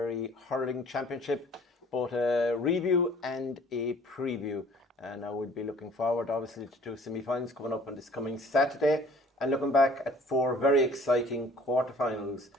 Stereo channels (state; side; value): normal; both; correlation 0.53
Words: Hurling Championship, both a review and a preview. And I would be looking forward, obviously, to two semi-finals coming up on this coming Saturday, and looking back at four very exciting quarterfinals,